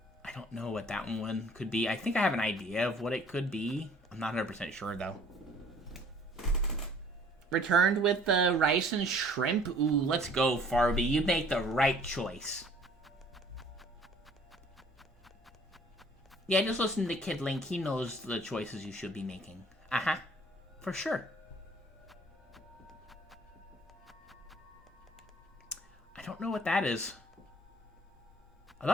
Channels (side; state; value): both; normal; correlation 0.54